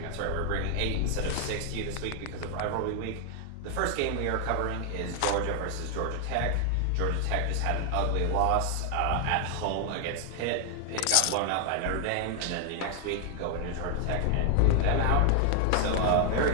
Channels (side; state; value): both; different; correlation 0.00